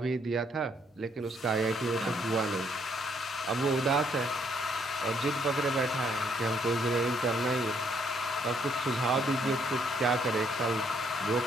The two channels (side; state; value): both; normal; correlation 0.69